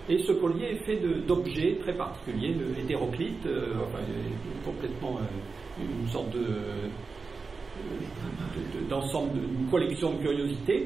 Et ce collier est fait d'objets très particuliers, le hétéroclite, complètement une sorte d'ensemble, d'une collection de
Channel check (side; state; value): left; quieter; 4.5 dB